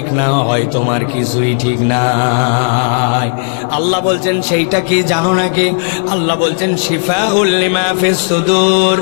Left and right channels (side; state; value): right; silent; digital silence